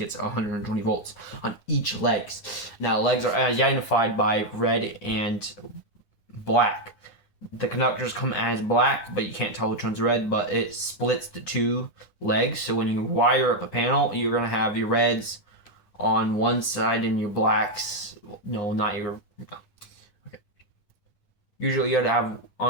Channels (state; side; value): late; right; 10 ms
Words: 120 volts on each legs. Now legs are identified by red and black. The conductors come as black, but you can't tell which one's red, but it splits the 2 legs. So when you wire up a panel, you're going to have your reds on one side and your blacks, no, not your, okay. Usually you would have,